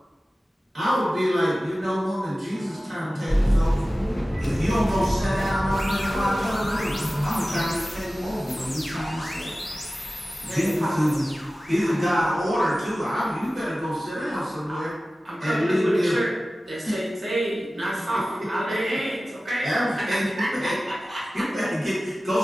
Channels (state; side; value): normal; both; correlation 0.96